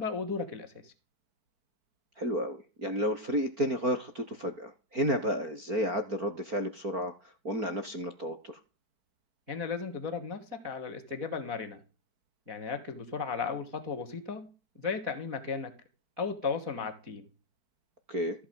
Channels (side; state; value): left; late; 4.4 ms